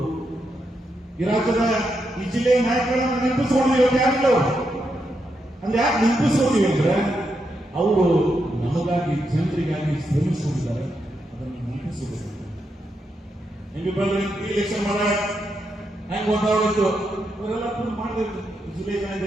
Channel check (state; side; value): normal; both; correlation 0.83